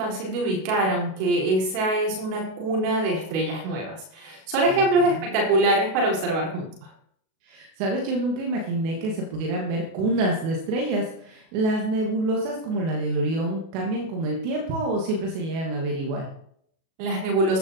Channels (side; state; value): left; late; 37 ms